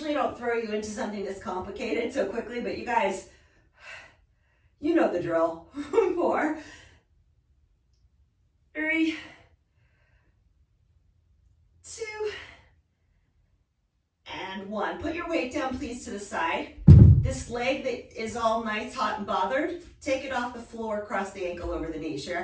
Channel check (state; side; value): identical; both; correlation 1.00